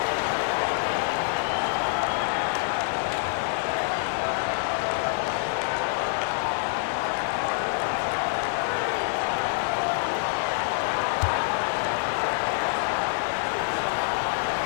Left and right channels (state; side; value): silent; right; digital silence